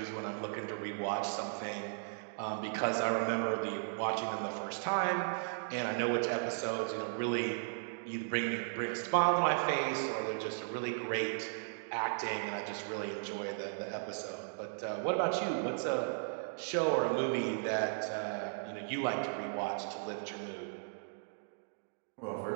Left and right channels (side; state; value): left; silent; digital silence